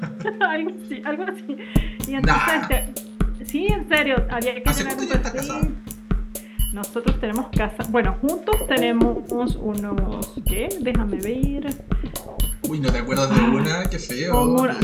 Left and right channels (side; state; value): both; identical; correlation 1.00